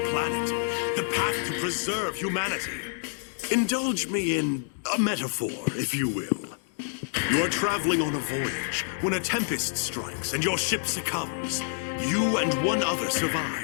planet. The path to preserve humanity. Indulge me in a metaphor, if you will. You are traveling on a voyage when a tempest strikes and your ship succumbs. You and one other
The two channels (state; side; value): silent; right; digital silence